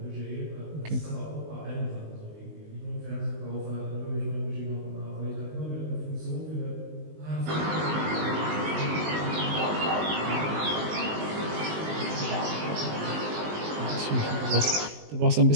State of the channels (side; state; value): left; late; 19 ms